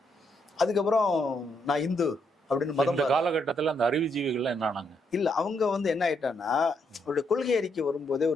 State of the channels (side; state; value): both; normal; correlation 0.76